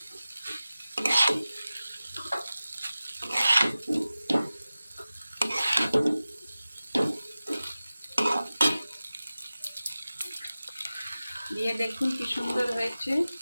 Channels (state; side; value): inverted; both; correlation -0.96